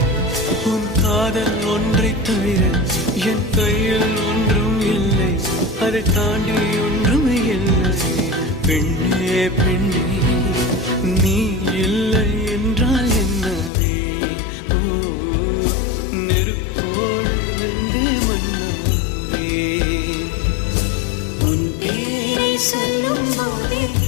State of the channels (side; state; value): right; drops out; at 13.7 s